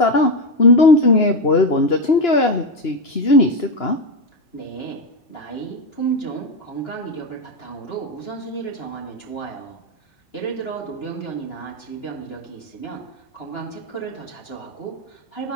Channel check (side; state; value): right; late; 2.9 ms